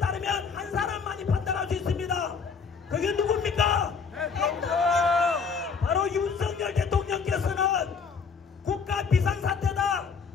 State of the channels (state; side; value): quieter; right; 5.6 dB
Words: 따르면 한 사람만이 판단할 수 있습니다. 그게 누굽니까? 바로 윤석열 대통령께서는 국가 비상사태다,